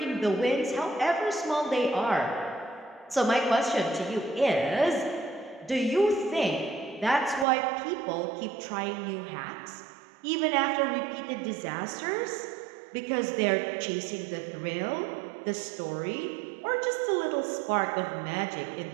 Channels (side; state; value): left; drops out; at 7.5 s